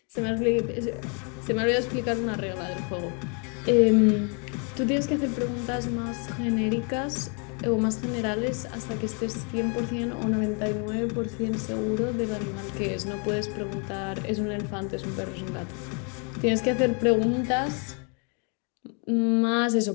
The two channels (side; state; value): right; quieter; 37.1 dB